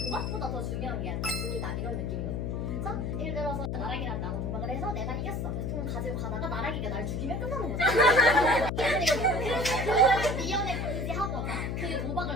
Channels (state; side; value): noise; left; hum, 2 dB below the sound